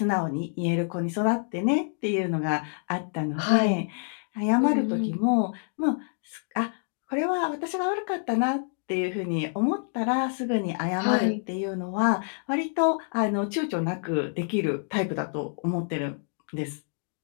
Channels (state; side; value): silent; right; 60 dB below the other